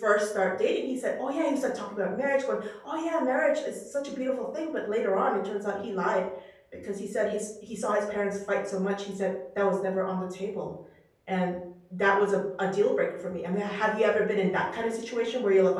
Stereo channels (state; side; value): identical; both; correlation 1.00